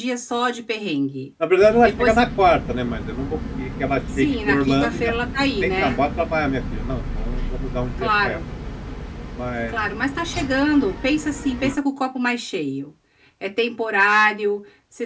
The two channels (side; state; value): both; identical; correlation 1.00